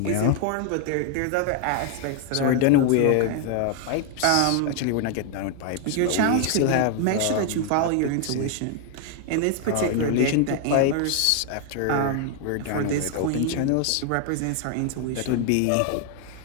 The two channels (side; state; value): both; different; correlation 0.00